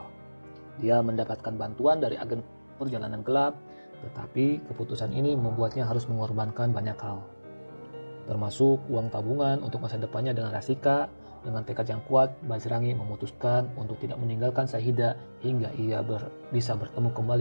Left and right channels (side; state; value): both; inverted; correlation -1.00